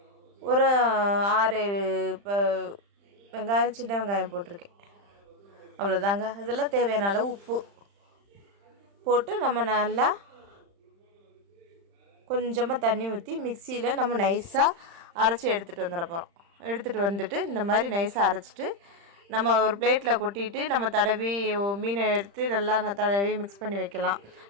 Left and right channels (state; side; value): late; left; 35 ms